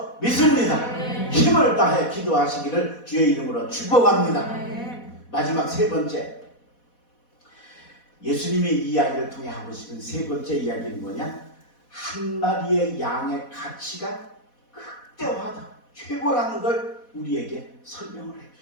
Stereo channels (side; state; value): right; late; 4.1 ms